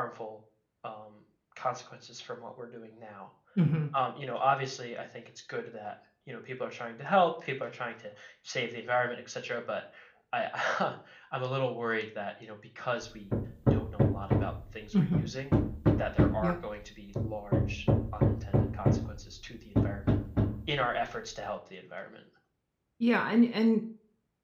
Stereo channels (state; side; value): identical; both; correlation 1.00